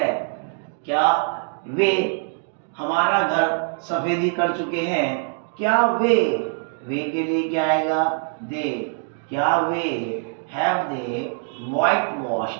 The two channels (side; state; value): left; silent; 63 dB below the other